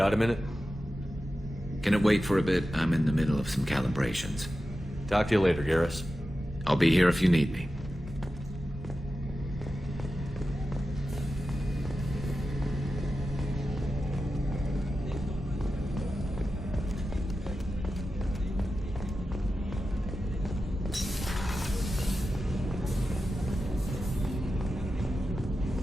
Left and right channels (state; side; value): normal; both; correlation 0.92